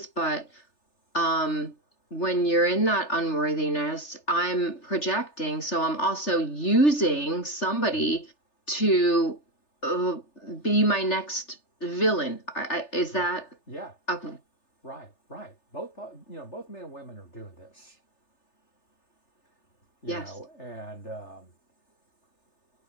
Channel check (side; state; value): right; late; 3.3 ms